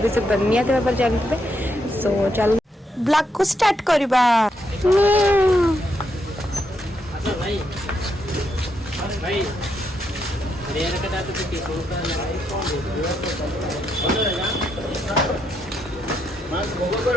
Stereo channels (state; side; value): normal; both; correlation 0.79